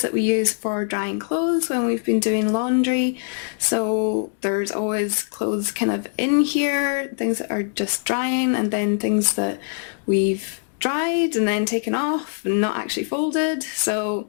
that we use for drying clothes when we've been doing laundry, so there's always clothes kind of in here, things that are just drying, and then things that we've dried and then taken off and not actually folded. So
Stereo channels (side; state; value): right; silent; 64 dB below the other